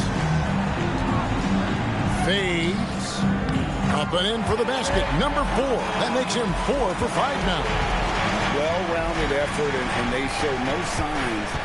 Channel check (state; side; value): identical; both; correlation 1.00